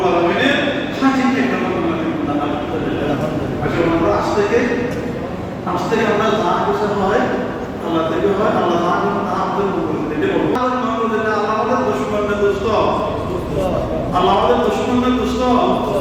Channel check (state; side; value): identical; both; correlation 1.00